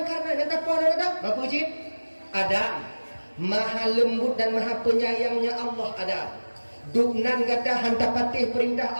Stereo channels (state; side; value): inverted; both; correlation -1.00